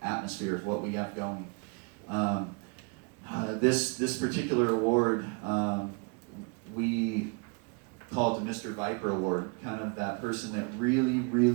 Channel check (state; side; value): quieter; left; 33.5 dB